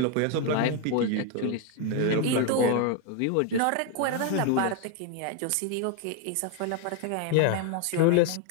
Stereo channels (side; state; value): both; different; correlation 0.01